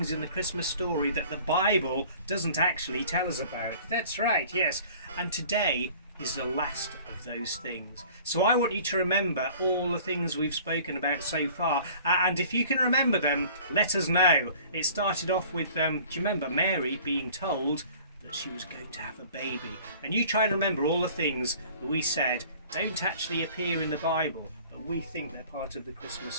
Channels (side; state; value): both; inverted; correlation -0.48